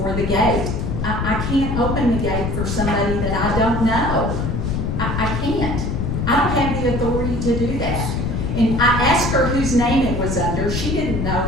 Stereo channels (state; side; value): noise; left; rumble, 1 dB below the sound